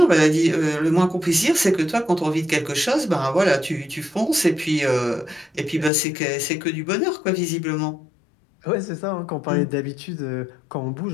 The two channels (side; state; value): right; drops out; at 5.9 s